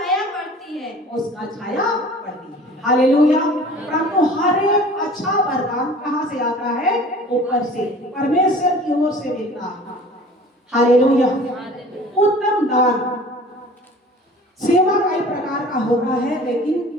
पड़ती है। उसका छाया पड़ती है। हालेलुया। परंतु हर एक अच्छा वरदान कहाँ से आता है? ऊपर से, परमेश्वर की ओर से मिलता है। हालेलुया। उत्तम दान सेवा का एक प्रकार का होता है,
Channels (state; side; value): normal; both; correlation 0.45